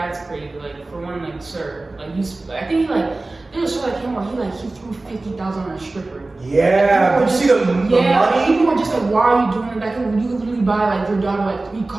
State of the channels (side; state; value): left; quieter; 3.1 dB